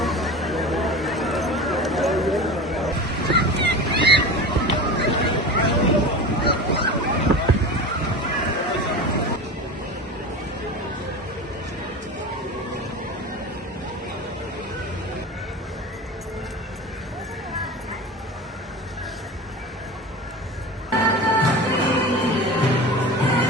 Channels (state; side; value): normal; both; correlation 0.30